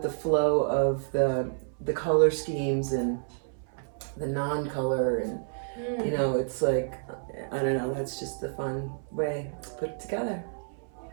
the flow of the color schemes and the non-color, and it's like, I don't know, that's just the fun way to put it together.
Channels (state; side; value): silent; left; 58 dB below the other